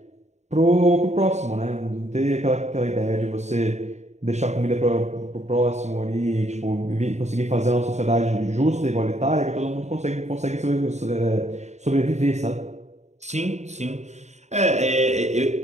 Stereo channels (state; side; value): late; left; 0.33 ms